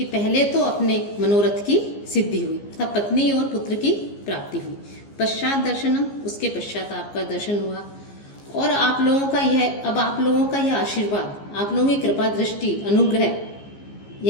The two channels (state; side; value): late; right; 15 ms